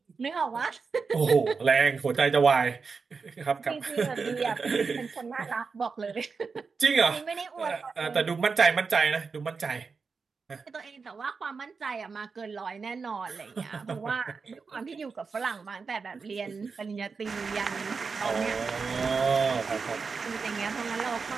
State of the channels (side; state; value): left; quieter; 4.9 dB